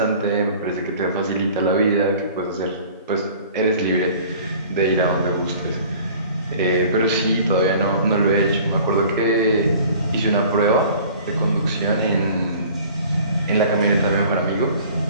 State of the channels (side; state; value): both; inverted; correlation -0.48